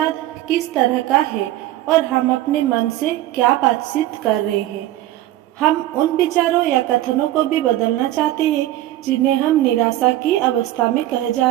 किस तरह का है और हम अपने मन से क्या बातचीत कर रहे हैं। हम उन विचारों या कथनों को भी बदलना चाहते हैं जिन्हें हम निराशा की अवस्था में कह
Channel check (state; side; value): quieter; left; 14.6 dB